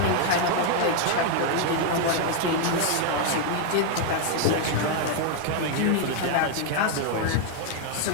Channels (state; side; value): different; both; correlation 0.00